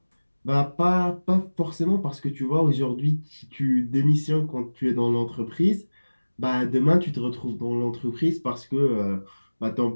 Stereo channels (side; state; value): both; inverted; correlation -1.00